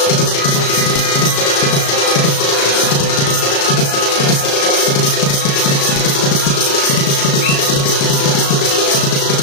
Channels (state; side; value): late; right; 35 ms